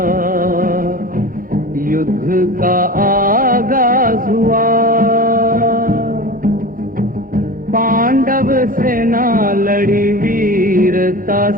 युद्ध का आगाज हुआ, पांडव सेना लड़ी वीरता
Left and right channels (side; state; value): left; late; 0.41 ms